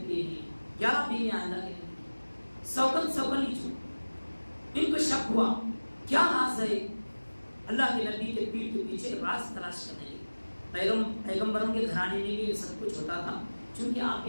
ہیں. 11 بیویاں اللہ کے نبی, سوکن ہی چھو. ان کو شک ہوا کیا راز ہے. اللہ کے نبی کے پیٹھ کے پیچھے راز تلاش کرنے لگے. پیغمبروں کے گھرانے میں بھی یہ سب کچھ ہوتا تھا, چونکہ آپ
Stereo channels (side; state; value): both; inverted; correlation -1.00